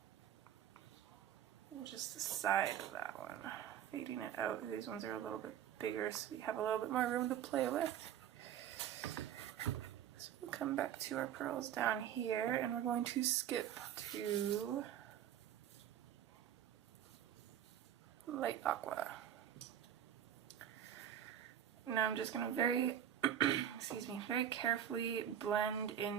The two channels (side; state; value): left; quieter; 10.2 dB